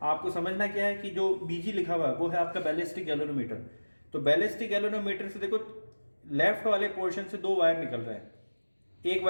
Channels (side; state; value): both; inverted; correlation -1.00